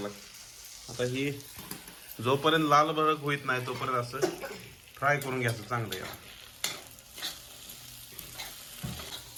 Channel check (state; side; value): identical; both; correlation 1.00